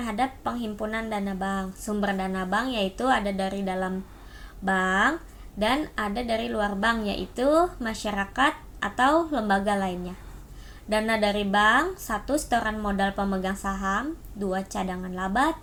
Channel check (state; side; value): identical; both; correlation 1.00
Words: penghimpunan dana bank. Sumber dana bank yaitu ada dari dalam bank dan ada dari luar bank, yaitu masyarakat atau lembaga lainnya. Dana dari bank: 1. Setoran modal pemegang saham, 2. Cadangan laba,